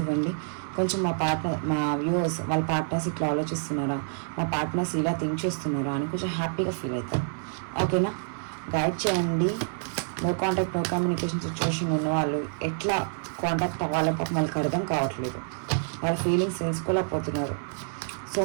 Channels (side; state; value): left; silent; 60 dB below the other